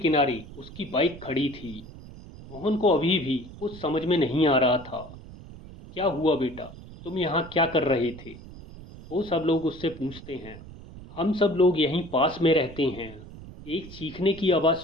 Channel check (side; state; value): right; noise; rumble, 16 dB below the sound